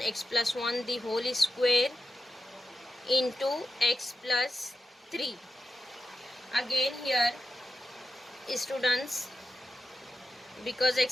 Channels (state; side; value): normal; both; correlation 0.91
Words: x plus 1 the whole square into x plus 3. Again here students, because